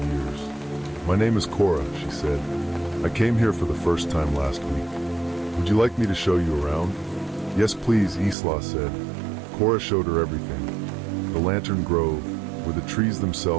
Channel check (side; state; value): left; drops out; at 8.3 s